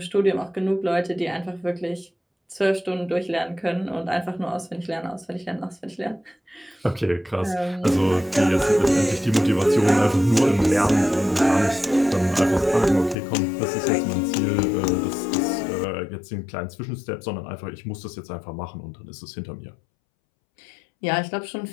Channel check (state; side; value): drops out; right; at 13.2 s